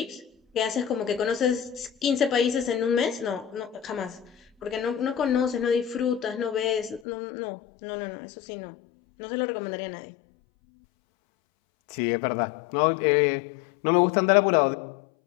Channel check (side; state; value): right; drops out; at 7.0 s